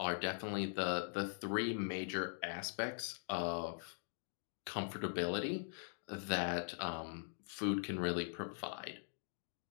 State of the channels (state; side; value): silent; right; digital silence